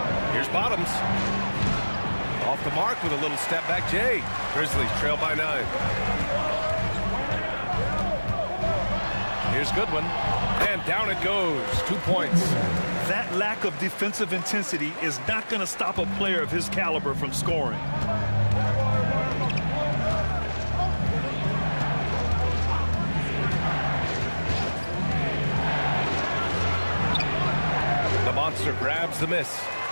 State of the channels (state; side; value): inverted; both; correlation -1.00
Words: Here's Bottoms. Off the mark with a little step back Jay. Grizzlies trail by 9. Here's Goodwin. And down it goes. 2 points. That lack of defensive intensity is not going to stop a player of his caliber from scoring. The monster grabs the miss.